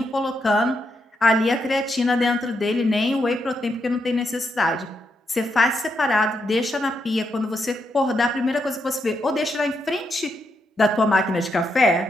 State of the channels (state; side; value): normal; both; correlation 0.81